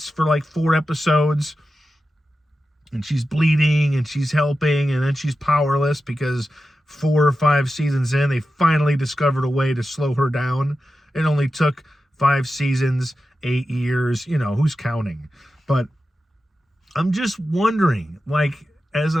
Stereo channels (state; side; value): normal; both; correlation 0.92